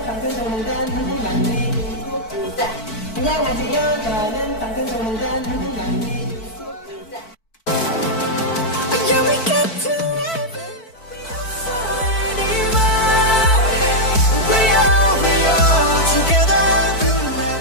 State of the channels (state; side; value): late; right; 4.5 ms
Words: 당근종단 한국만리 중국자. 안녕하세요. 저는 당근종단 한국만리 중국자.